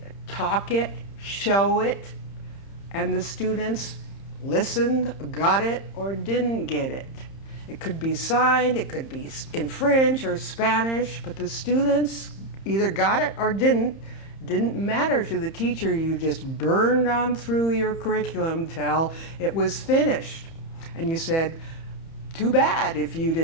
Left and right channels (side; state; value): right; late; 30 ms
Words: talk it, show it, and the students listened, got it, or didn't get it. It could be signed, it could be in French or Spanish, but the students either got it or didn't matter to the teacher. You just burned on through your curriculum till it was finished. And you said, too bad if you